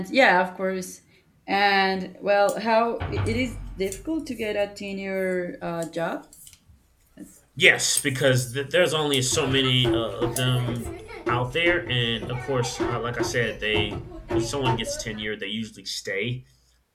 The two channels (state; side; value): identical; both; correlation 1.00